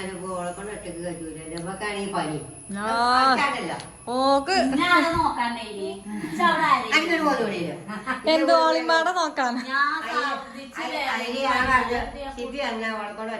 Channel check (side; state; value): both; identical; correlation 1.00